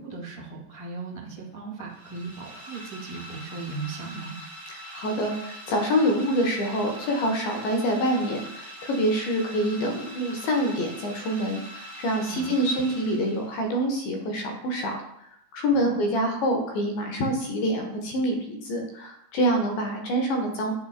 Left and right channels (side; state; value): right; late; 15 ms